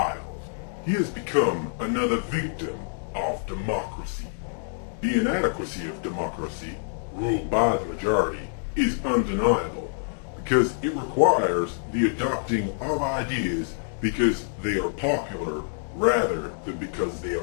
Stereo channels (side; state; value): right; silent; digital silence